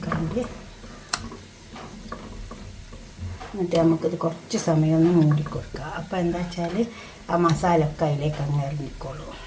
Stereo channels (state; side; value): identical; both; correlation 1.00